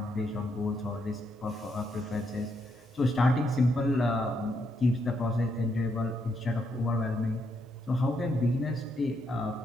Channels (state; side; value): normal; both; correlation 0.77